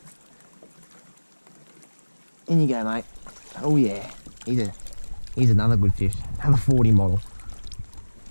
In you go, mate. Oh yeah. He's another good fish. Another 40 model.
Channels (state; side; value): inverted; both; correlation -1.00